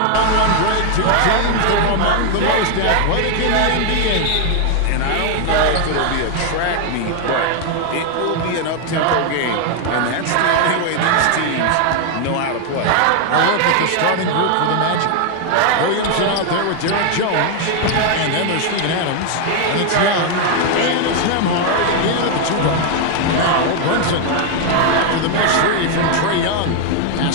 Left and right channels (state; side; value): different; both; correlation 0.00